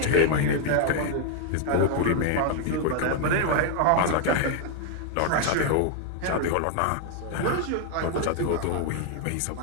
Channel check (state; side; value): different; both; correlation 0.00